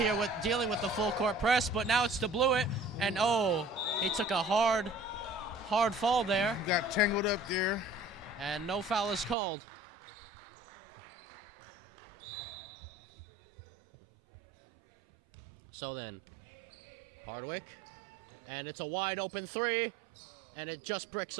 with dealing with the full court press, but now it's to Blewett. And oh, he took a hard fall there. Got tangled up there. And no foul is called. So then, Hardwick, and it's a wide open three, and it just bricks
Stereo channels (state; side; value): drops out; left; at 9.3 s